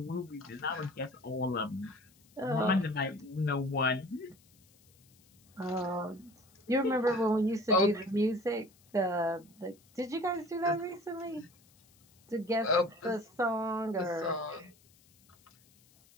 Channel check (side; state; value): left; noise; hiss, 30 dB below the sound